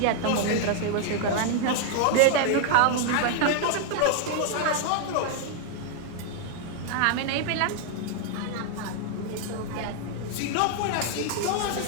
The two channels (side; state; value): both; different; correlation 0.00